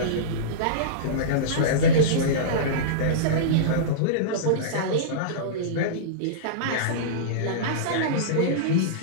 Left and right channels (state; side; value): different; both; correlation -0.05